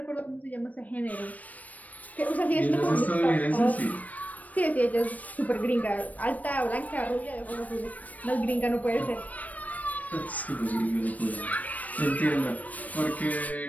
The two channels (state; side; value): late; right; 0.073 ms